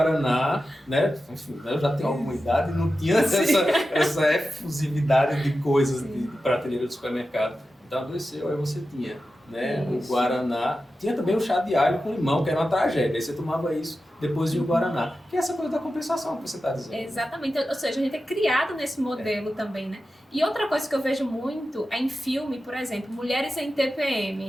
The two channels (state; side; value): normal; both; correlation 0.92